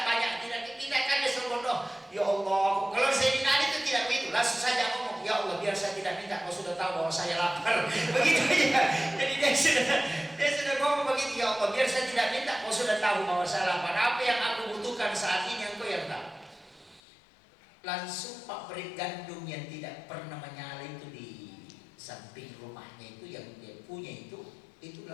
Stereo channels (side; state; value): right; drops out; at 17.0 s